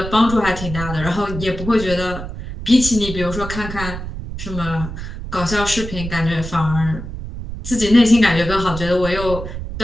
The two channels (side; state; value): right; noise; rumble, 8 dB below the sound